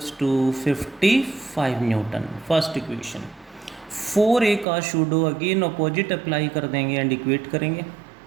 to 55 newton. First equation. 4a का pseudo again opposite apply कर देंगे एंड इक्वेट करेंगे.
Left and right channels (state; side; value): drops out; left; at 4.7 s